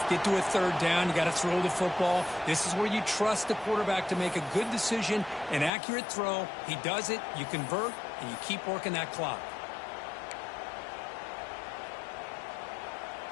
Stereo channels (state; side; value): drops out; right; at 5.7 s